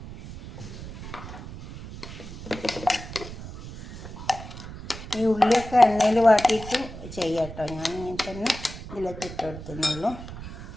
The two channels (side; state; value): right; noise; rumble, 12 dB below the sound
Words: ഈ ഉള്ളിയൊക്കെ എണ്ണയിൽ വാട്ടിയിട്ട് ചെയ്യാം കേട്ടോ. ഞാൻ ഇങ്ങനെ തന്നെ ഇതിലേക്ക് ഇട്ട് കൊടുത്തുന്നുള്ളൂ.